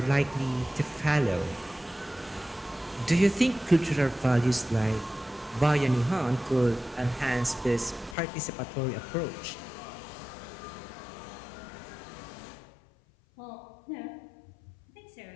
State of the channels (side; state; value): right; drops out; at 8.2 s